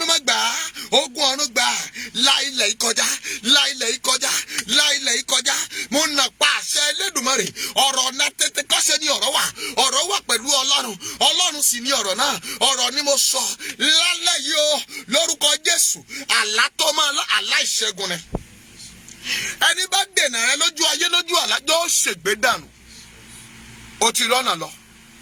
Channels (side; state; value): both; identical; correlation 1.00